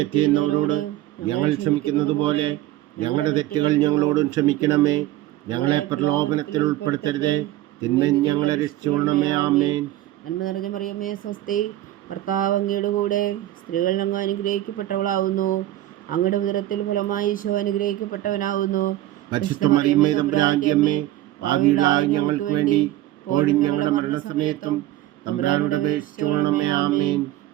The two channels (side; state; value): left; quieter; 14.6 dB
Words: ചെയ്യുന്നവരോട് ഞങ്ങൾ ക്ഷമിക്കുന്നത് പോലെ ഞങ്ങളുടെ തെറ്റുകൾ ഞങ്ങളോടും ക്ഷമിക്കണമേ. ഞങ്ങളെ പ്രലോഭനത്തിൽ ഉൾപ്പെടുത്തരുതേ, തിന്മയിൽ ഞങ്ങളെ രക്ഷിച്ചുകൊള്ളണമേ. ആമേൻ. നന്മ നിറഞ്ഞ മറിയമേ സ്വസ്തി, കർത്താവ് അങ്ങയുടെ കൂടെ സ്ത്രീകൾ അങ്ങ് അനുഗ്രഹിക്കപ്പെട്ടവളാവുന്നു. അങ്ങയുടെ ഉദരത്തിൽ ഫലമായി ഈശോ അനുഗ്രഹിക്കപ്പെട്ടവനാവുന്നു. പരിശുദ്ധ മറിയമേ തമ്പുരാന്റെ അമ്മേ, പാപികളായ ഞങ്ങൾക്ക് വേണ്ടി ഇപ്പോഴും ഞങ്ങളുടെ മരണസമയത്തും തമ്പുരാനോട് അപേക്ഷിച്ചുകൊള്ളണമേ. ആമേൻ.